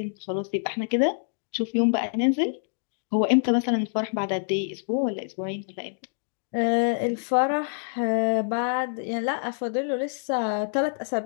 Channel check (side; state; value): right; silent; digital silence